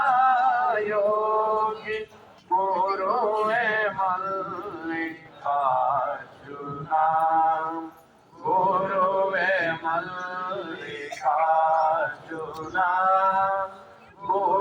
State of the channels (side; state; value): both; identical; correlation 1.00